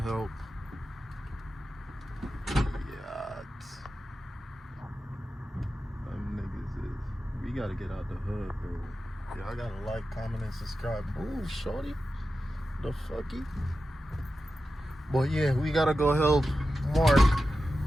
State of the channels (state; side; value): normal; both; correlation 0.92